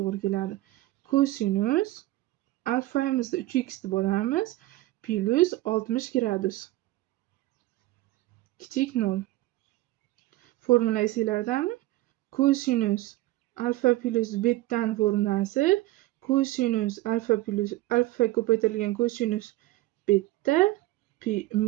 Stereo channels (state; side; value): quieter; left; 17.5 dB